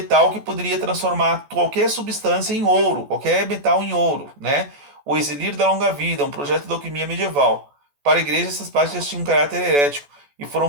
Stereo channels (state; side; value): late; left; 14 ms